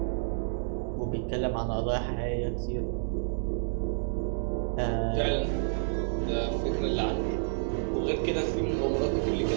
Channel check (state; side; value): silent; left; digital silence